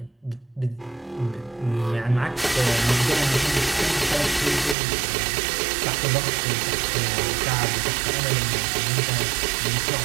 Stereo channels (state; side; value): drops out; left; at 4.8 s